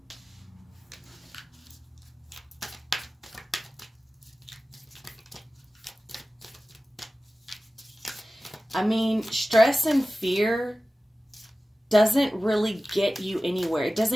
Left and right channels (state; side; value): normal; both; correlation 0.96